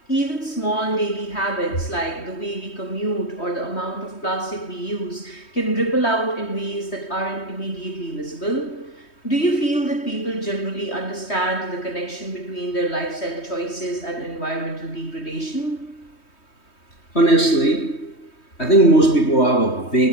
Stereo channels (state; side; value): late; right; 3.2 ms